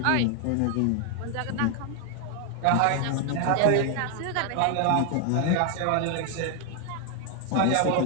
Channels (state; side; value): different; both; correlation 0.00